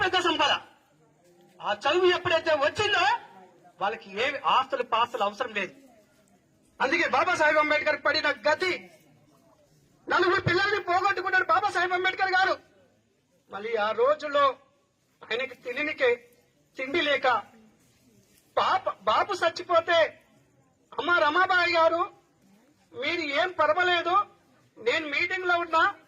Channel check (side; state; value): both; identical; correlation 1.00